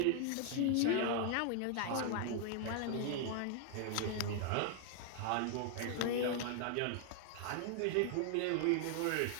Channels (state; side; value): different; both; correlation 0.00